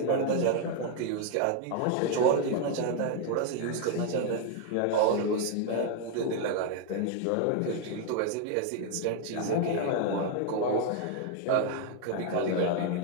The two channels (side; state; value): both; different; correlation 0.00